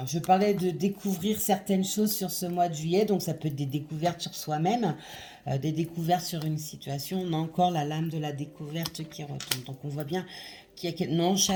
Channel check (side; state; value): both; identical; correlation 1.00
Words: je parlais de découvrir certaines choses sur ce mois de juillet, donc ça peut être des découvertes sur soi-même, des découvertes sur une situation. On a encore la lame de la découverte qui retombe. Donc on voit bien qu'il y a... Non,